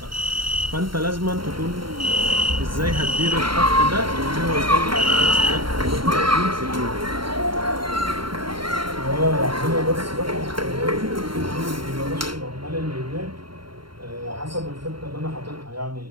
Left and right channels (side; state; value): left; late; 0.73 ms